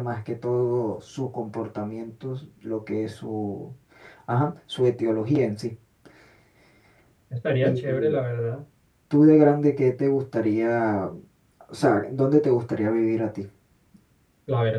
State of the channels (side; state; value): both; identical; correlation 1.00